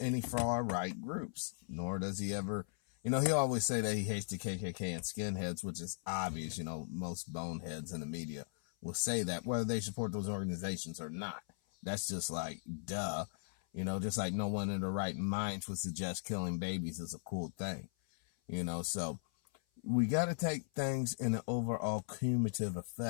any far-right groups, nor does he ever, you know, he always say that he hates the KKK and skinheads, which is obvious. You know, most boneheads in the media will say that, whether they support those organizations or not. That's just like, duh. You know, just like no one in their right minds would suggest killing babies is a cool thing. You know, so we got to take things in an overall cumulative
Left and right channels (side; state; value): right; silent; 52 dB below the other